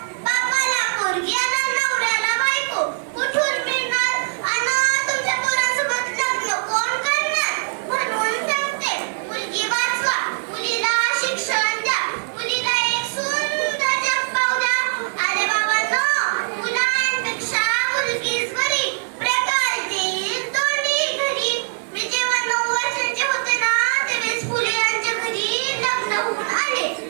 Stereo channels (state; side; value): silent; left; digital silence